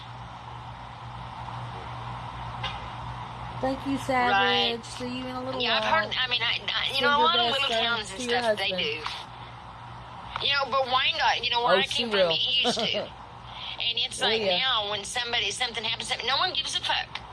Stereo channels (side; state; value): both; identical; correlation 1.00